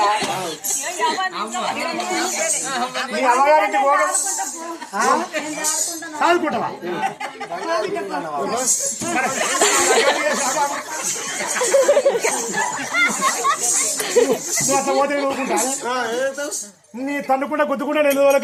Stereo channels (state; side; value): identical; both; correlation 1.00